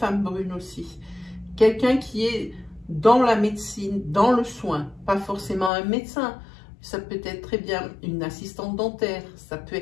brune aussi. Quelqu'un qui est dans la médecine, dans le soin, pas forcément un médecin. Ça peut être très bien une assistante dentaire.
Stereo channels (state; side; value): drops out; right; at 5.7 s